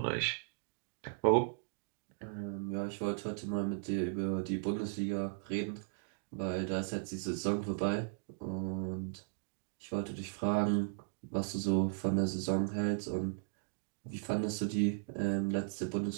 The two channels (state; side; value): silent; left; digital silence